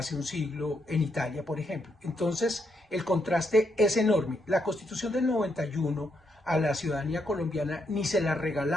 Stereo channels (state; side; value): normal; both; correlation 0.78